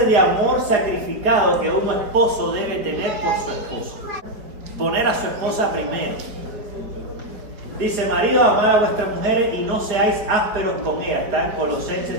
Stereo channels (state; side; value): late; left; 4.6 ms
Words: de amor sacrificado que un esposo debe tener por su esposa. Poner a su esposa primero. Dice, marido, amad a vuestras mujeres y no seáis ásperos con ellas. Está en